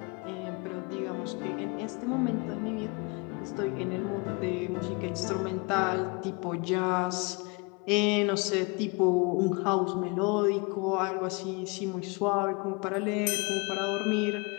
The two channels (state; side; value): quieter; right; 30.0 dB